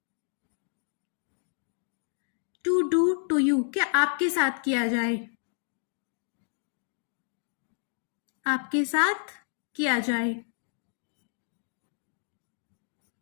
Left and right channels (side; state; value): right; silent; digital silence